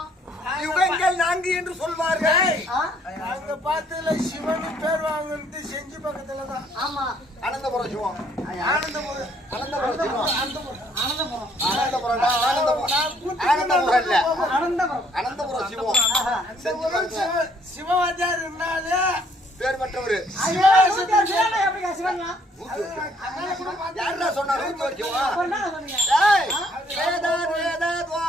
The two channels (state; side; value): normal; both; correlation 0.65